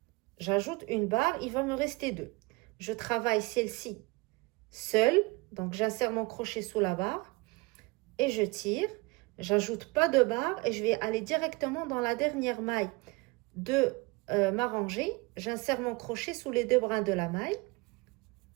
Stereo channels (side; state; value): left; quieter; 25.3 dB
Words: J'ajoute une barre, il va me rester 2. Je travaille celle-ci seule, donc j'insère mon crochet sous la barre et je tire. J'ajoute pas de barre et je vais aller directement dans la dernière maille de ma rangée. J'insère mon crochet sous les 2 brins de la maille